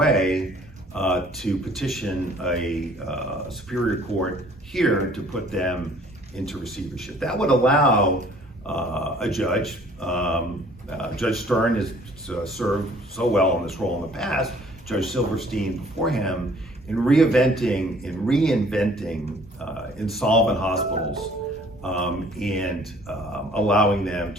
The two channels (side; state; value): both; normal; correlation 0.56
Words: to petition a superior court here to put them into receivership. That would allow a judge, Judge Stern has served so well in this role in the past, Judge Silverstein before him, in reinventing insolvent hospitals and allowing them